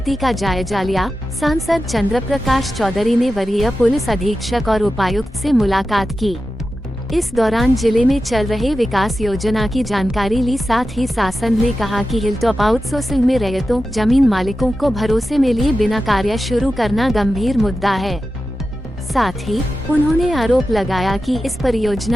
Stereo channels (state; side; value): normal; both; correlation 0.92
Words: का जायजा लिया। सांसद चंद्र प्रकाश चौधरी ने वरीय पुलिस अधीक्षक और उपायुक्त से मुलाकात की। इस दौरान जिले में चल रहे विकास योजना की जानकारी ली। साथ ही शासन ने कहा कि हिलटॉप आउटसोर्सिंग में रैयतों, जमीन मालिकों को भरोसे में लिए बिना कार्य शुरू करना गंभीर मुद्दा है। साथ ही उन्होंने आरोप लगाया कि इस